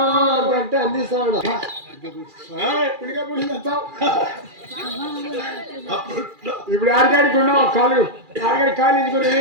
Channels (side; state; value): left; late; 2.4 ms